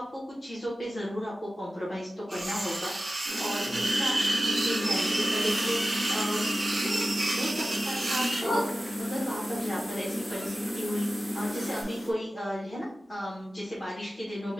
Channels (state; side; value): normal; both; correlation 0.95